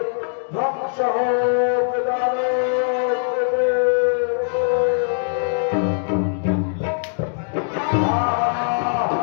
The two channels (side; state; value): right; silent; digital silence